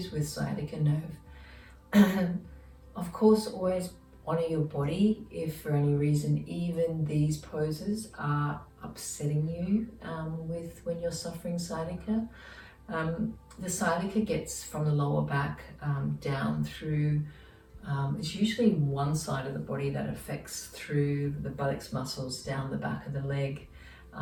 with sciatica nerve. Of course, always honor your body if for any reason even these poses are upsetting you with when you're suffering sciatica. The sciatica gets from the lower back down through it's usually one side of the body that affects through the buttocks muscles down the back of the leg.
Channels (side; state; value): both; identical; correlation 1.00